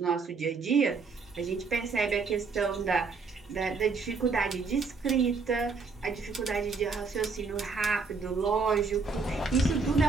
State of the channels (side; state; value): left; quieter; 4.6 dB